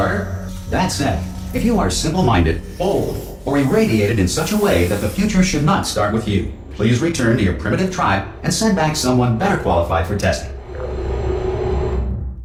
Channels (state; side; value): identical; both; correlation 1.00